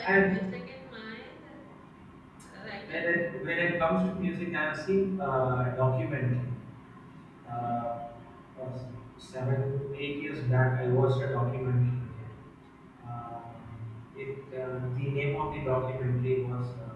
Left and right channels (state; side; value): identical; both; correlation 1.00